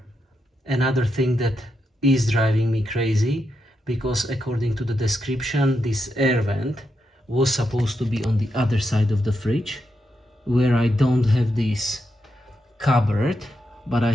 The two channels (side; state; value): both; normal; correlation 0.84